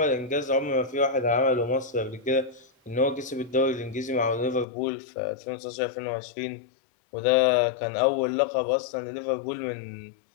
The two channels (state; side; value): drops out; right; at 4.7 s